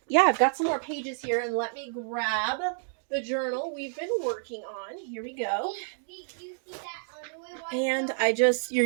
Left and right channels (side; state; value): left; silent; digital silence